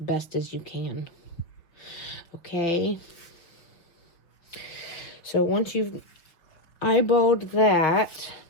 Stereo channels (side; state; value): right; late; 5.6 ms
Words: as you can. Okay, so once you've eyeballed that,